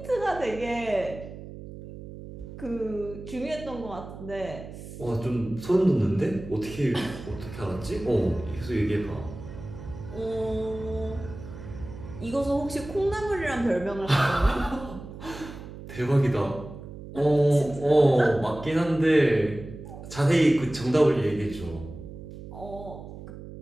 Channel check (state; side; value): noise; right; hum, 13 dB below the sound